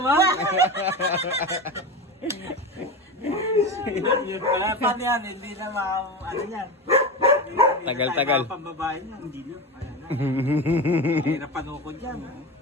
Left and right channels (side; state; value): both; normal; correlation 0.23